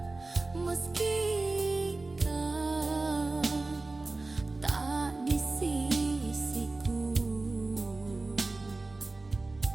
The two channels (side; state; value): left; quieter; 3.3 dB